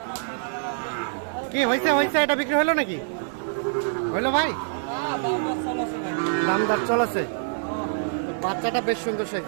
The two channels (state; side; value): silent; left; digital silence